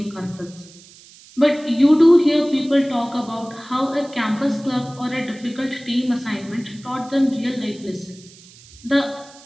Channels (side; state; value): right; noise; hiss, 23 dB below the sound